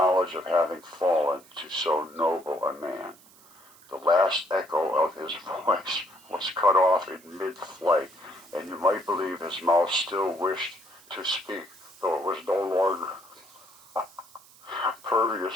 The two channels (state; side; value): noise; right; hiss, 25 dB below the sound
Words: of having fallen to so noble a man." The last echo of his voice was cut off in mid-flight, and you might believe his mouth still wished to speak, though it was no longer